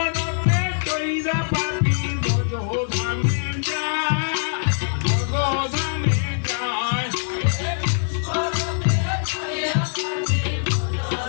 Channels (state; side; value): silent; right; digital silence